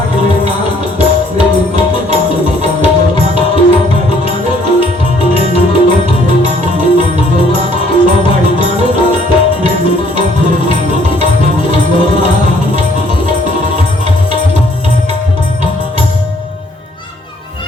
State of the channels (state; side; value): normal; both; correlation 0.63